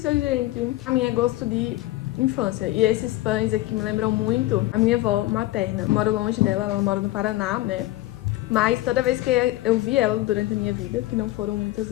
gente! A minha é gosto de infância. E esses pães aqui me lembram muito a minha avó materna. Eu moro longe dela, ela mora no Paraná, né? Mas toda vez que eu vi ela durante a minha vida, que não foram muitas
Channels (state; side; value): quieter; right; 17.2 dB